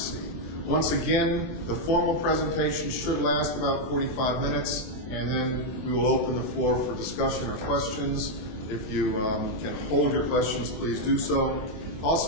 Once again, the formal presentation should last about 45 minutes, and then we will open the floor for discussion or questions. If you can hold your questions, please do so.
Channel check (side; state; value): right; late; 24 ms